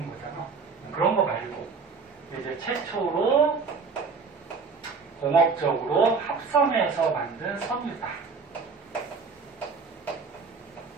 거잖아. 그런 거 말고. 이제 최초로 공업적으로 합성해서 만든 섬유다.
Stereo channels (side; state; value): left; quieter; 5.0 dB